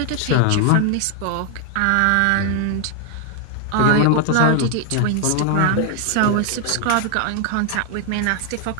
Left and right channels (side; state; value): both; different; correlation 0.00